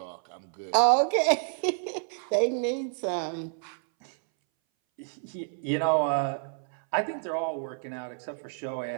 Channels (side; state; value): left; silent; 59 dB below the other